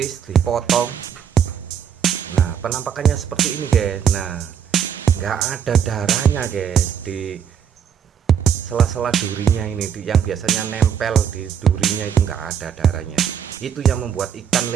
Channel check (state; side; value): quieter; left; 8.1 dB